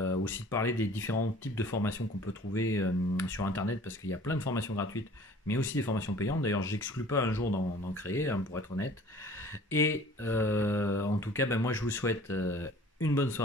aussi de parler des différents types de formations qu'on peut trouver sur internet, parce qu'il y a plein de formations gratuites mais aussi des formations payantes. D'ailleurs j'exclus pas un jour d'en créer, hein, pour être honnête. Et en En tout cas, ben, moi je vous souhaite une bonne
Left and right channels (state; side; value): normal; both; correlation 0.49